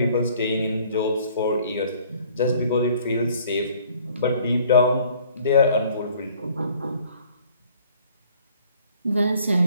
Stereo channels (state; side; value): inverted; both; correlation -0.57